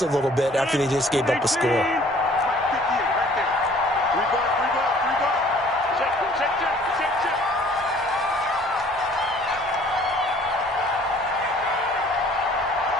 a little bit after they just gave up a score.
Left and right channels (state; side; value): normal; both; correlation 0.54